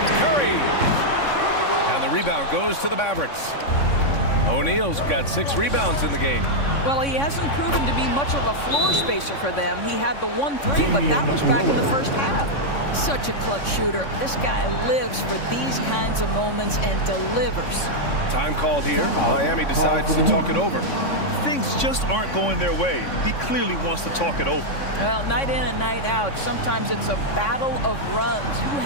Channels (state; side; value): late; right; 3.6 ms